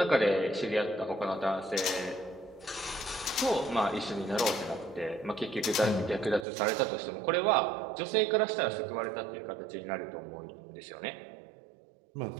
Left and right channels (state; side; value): drops out; left; at 6.5 s